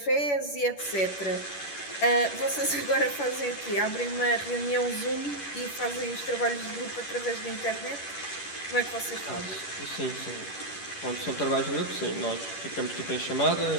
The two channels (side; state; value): right; late; 11 ms